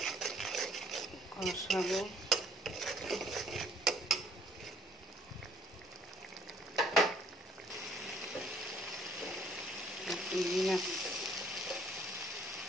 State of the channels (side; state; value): both; normal; correlation 0.59